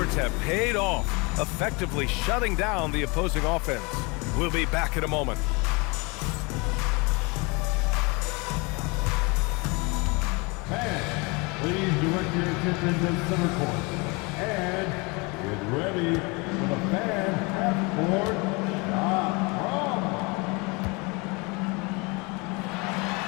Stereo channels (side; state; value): right; quieter; 28.2 dB